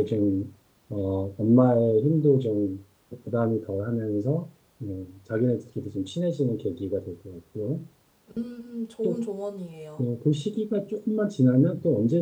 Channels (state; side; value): identical; both; correlation 1.00